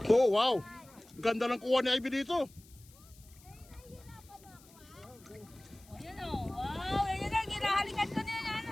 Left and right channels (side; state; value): left; noise; hiss, 25 dB below the sound